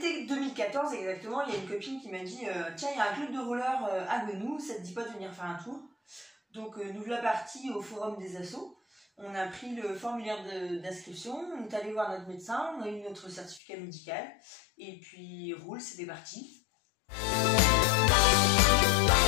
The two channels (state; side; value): drops out; right; at 13.6 s